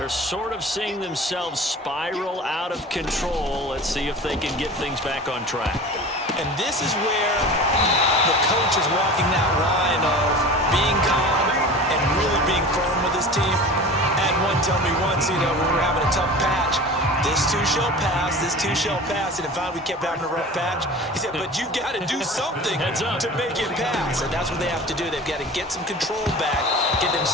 sort of seeing themselves spiral out of control. Let's see if they can get things back on track. And this is where the coach is walking that line of being calm and really being firm with his team. Had one tell me once, when we were having a tough patch, this too shall pass, this too shall pass. And if we kept having a rough patch, he said, but you got to do something to make it pass. And that's what they have to do. They've got to get some control back, get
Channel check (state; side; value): normal; both; correlation 0.37